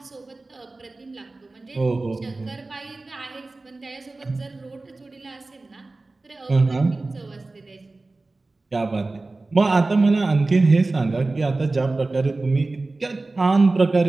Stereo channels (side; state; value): left; quieter; 3.3 dB